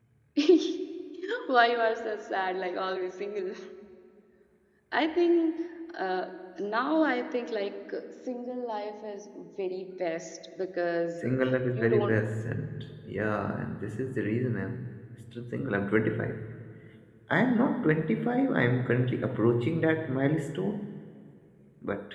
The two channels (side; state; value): both; identical; correlation 1.00